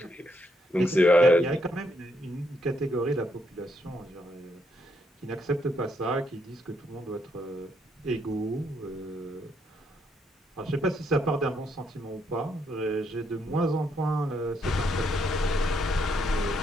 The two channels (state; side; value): normal; both; correlation 0.75